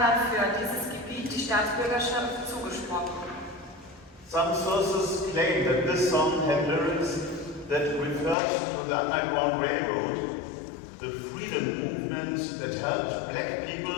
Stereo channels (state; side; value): drops out; right; at 8.3 s